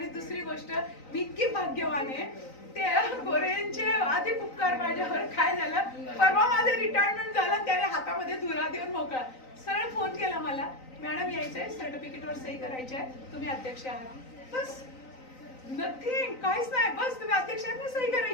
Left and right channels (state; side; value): late; right; 3.9 ms